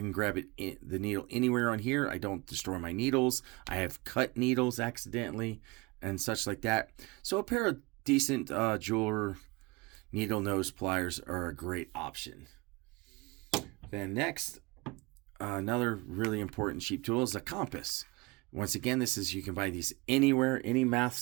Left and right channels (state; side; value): quieter; left; 25.4 dB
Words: grab the needle anywhere on here. I don't destroy my needles. I have cut needles accidentally and such like that. So a pair of decent jeweler needle nose pliers are a great option. Then next, another really important cheap tool is a compass. Once again, you can buy these anywhere, any math